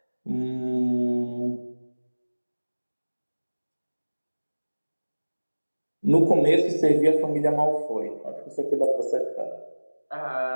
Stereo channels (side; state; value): both; inverted; correlation -1.00